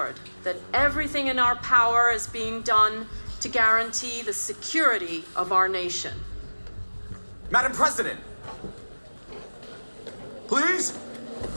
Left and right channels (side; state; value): both; inverted; correlation -1.00